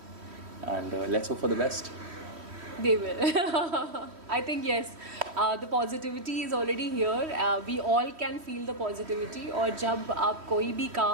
and let's hope for the best. They will. I think yes, the positivity is already here. We all can feel the positivity. और जब आप कोई भी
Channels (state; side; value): late; left; 3.1 ms